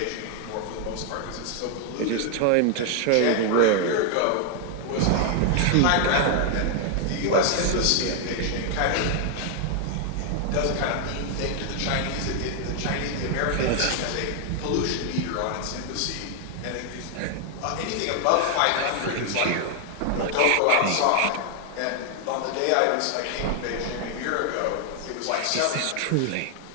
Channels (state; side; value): different; both; correlation 0.00